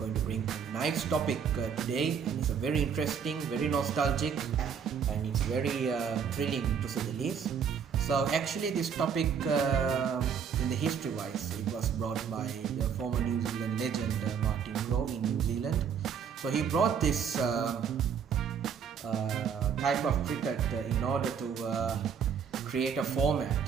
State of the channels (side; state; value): left; quieter; 7.1 dB